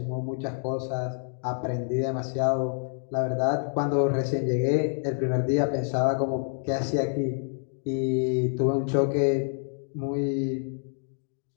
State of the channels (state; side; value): silent; right; digital silence